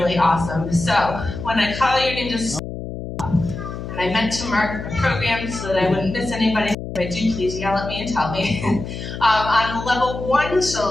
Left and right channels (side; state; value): left; noise; hum, 8 dB below the sound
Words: awesome. So when I call your name, just stop. And I meant to mark my program so that I wouldn't miss anybody. If I do, please yell at me and tell me. On level 1